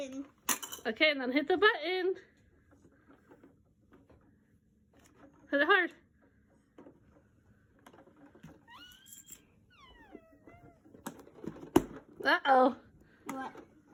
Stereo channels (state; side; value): identical; both; correlation 1.00